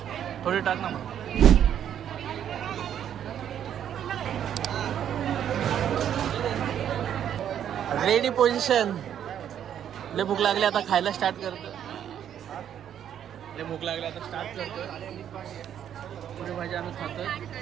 थोडी टाक ना मग. Ready position. लय भूक लागली आता खायला स्टार्ट करतो. लय भूक लागली आता स्टार्ट करतो. पुरी भाजी आम्ही खातोय.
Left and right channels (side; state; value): left; quieter; 9.7 dB